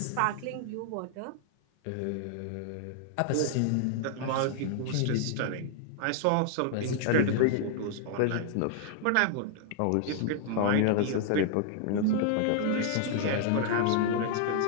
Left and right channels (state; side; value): different; both; correlation 0.00